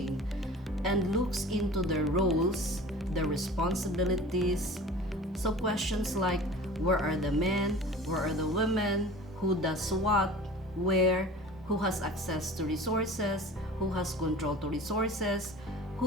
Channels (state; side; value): normal; both; correlation 0.40